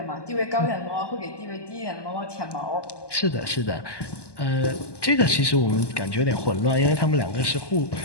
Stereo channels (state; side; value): late; right; 1.2 ms